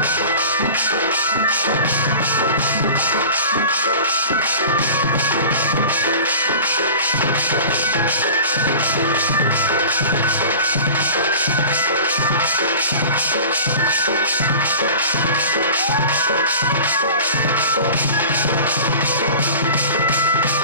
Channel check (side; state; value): both; inverted; correlation -0.38